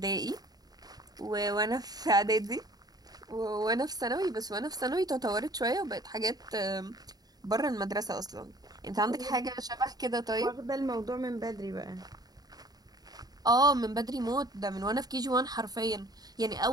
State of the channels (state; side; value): late; left; 0.19 ms